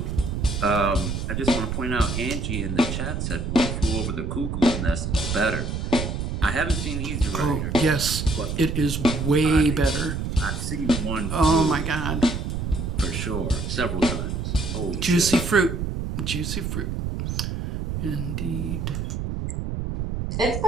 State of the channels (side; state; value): right; noise; rumble, 3 dB below the sound